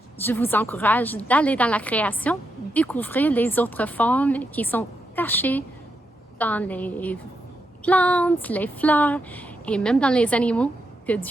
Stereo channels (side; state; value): both; normal; correlation 0.83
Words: je vous encourage d'aller dans la création, découvrir les autres formes qui sont cachées dans les plantes, les fleurs et même dans les animaux que